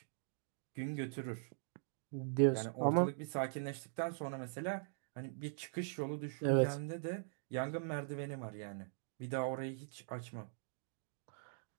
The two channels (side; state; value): left; silent; digital silence